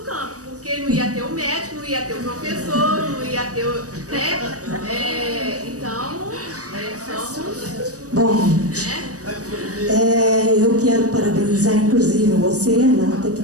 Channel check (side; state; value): left; late; 0.66 ms